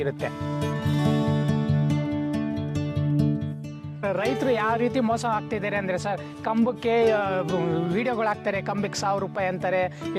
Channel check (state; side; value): identical; both; correlation 1.00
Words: ರೈತರು ಯಾವ ರೀತಿ ಮೋಸ ಆಗ್ತಿದ್ದಾರೆ ಅಂದರೆ ಸರ್, ಕಂಬಕ್ಕೆ ವಿಡಿಯೋಗಳು ಹಾಕ್ತಾರೆ, ಕಂಬಕ್ಕೆ 1000 ರೂಪಾಯಿ ಅಂತಾರೆ,